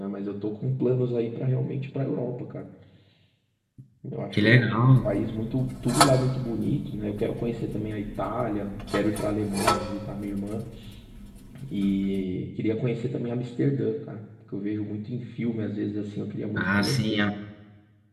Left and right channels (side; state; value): both; identical; correlation 1.00